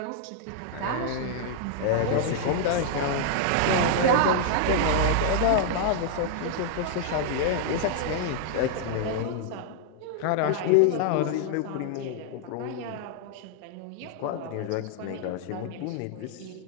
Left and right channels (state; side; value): different; both; correlation -0.01